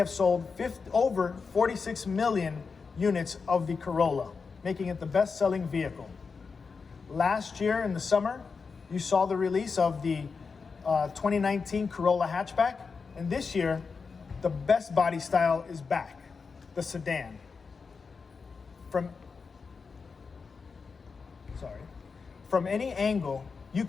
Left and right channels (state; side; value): quieter; right; 5.0 dB